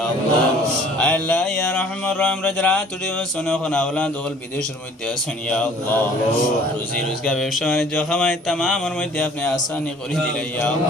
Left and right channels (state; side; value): normal; both; correlation 0.53